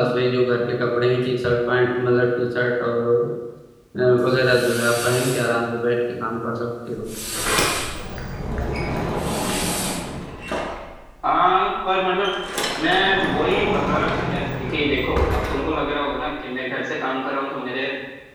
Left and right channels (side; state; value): both; identical; correlation 1.00